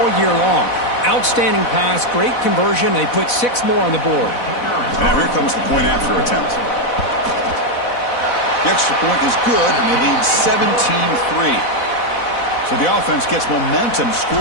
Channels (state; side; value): late; right; 4.1 ms